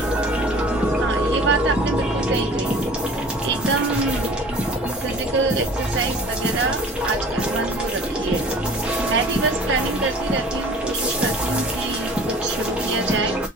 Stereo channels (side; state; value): both; normal; correlation 0.46